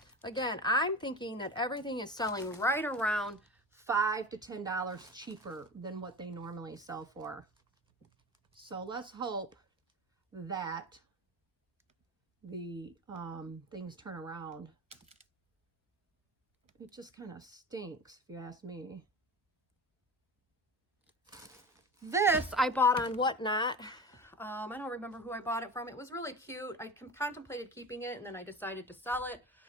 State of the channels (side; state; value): both; normal; correlation 0.31